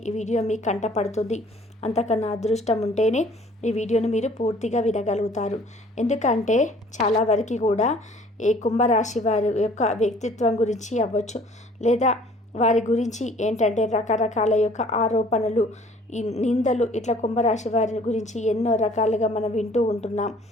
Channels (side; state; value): both; normal; correlation 0.54